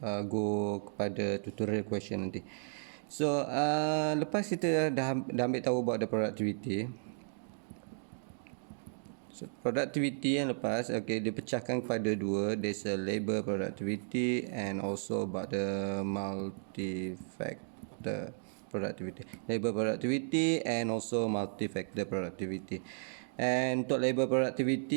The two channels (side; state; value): left; silent; digital silence